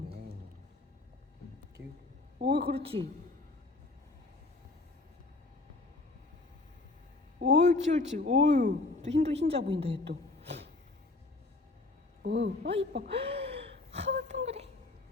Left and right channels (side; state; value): right; quieter; 3.2 dB